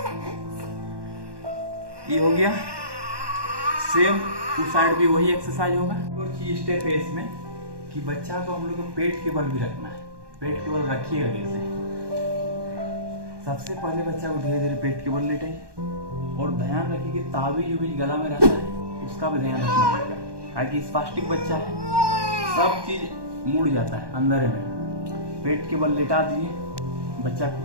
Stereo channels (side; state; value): left; late; 1.2 ms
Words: ये हो गया। सेम उस साइड भी वही एक्सरसाइज होगा। और चीज स्टेप है इसमें कि बच्चा को हम लोग को पेट के बल भी रखना है। पेट के बल रखिएगा कैसे? सबसे पहले बच्चा को धीरे धीरे पेट के बल लेटाइए और ध्यान रखिए कि ताबीज जो बीच गला में रहता है उसका भी ध्यान रखना पड़ेगा, ताकि स्पास्टिक बच्चा है, सब चीज मुड़ जाता है अंदर में। पेट के बल लेटा दीजिए बच्चा को